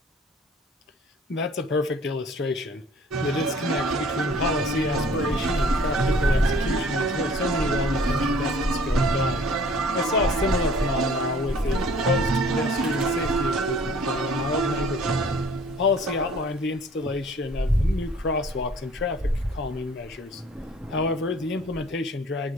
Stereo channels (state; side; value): normal; both; correlation 0.52